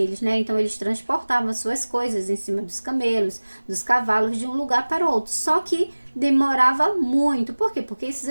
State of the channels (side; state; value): both; inverted; correlation -1.00